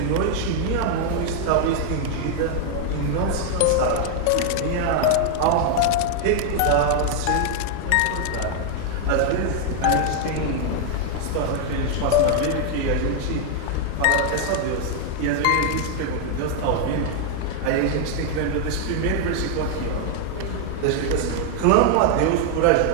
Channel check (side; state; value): both; different; correlation 0.00